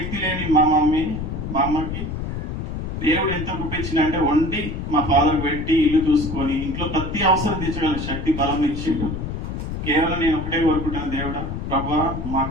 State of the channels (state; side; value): noise; left; rumble, 5 dB below the sound